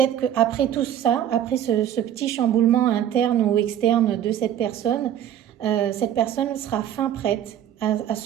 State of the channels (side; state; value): left; quieter; 10.5 dB